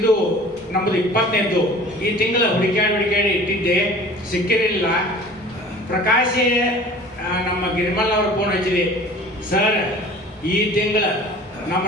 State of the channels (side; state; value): both; normal; correlation 0.44